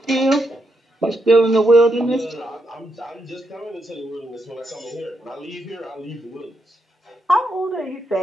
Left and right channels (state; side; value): normal; both; correlation 0.81